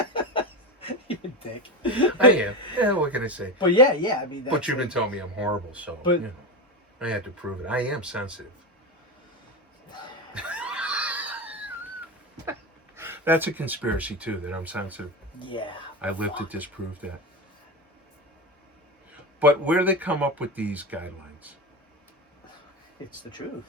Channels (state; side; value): normal; both; correlation 0.19